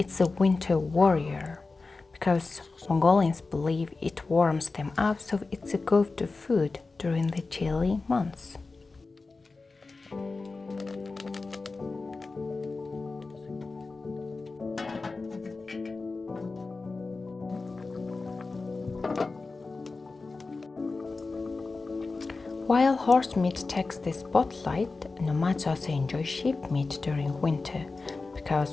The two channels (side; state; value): right; quieter; 3.8 dB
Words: a winter warrior. Because Mongolians believe it warms them up, so it's a go-to food during the chilly months. While horse meat takes the spotlight, nomads also enjoy sheep meat during winter